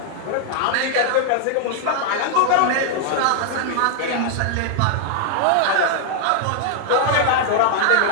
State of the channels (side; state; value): both; different; correlation -0.01